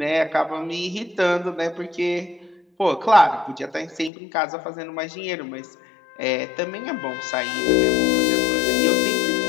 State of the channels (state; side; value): drops out; right; at 4.1 s